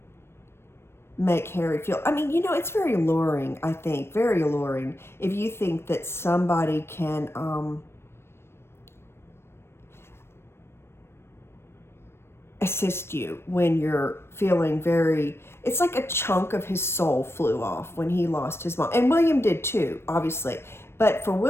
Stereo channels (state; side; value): late; right; 0.12 ms